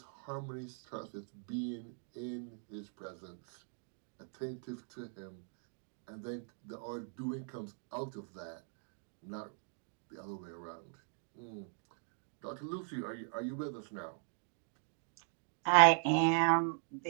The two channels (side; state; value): left; silent; 51 dB below the other